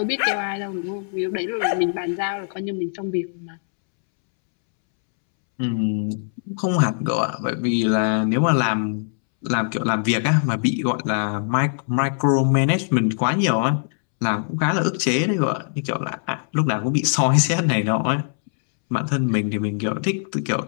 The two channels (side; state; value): right; silent; 64 dB below the other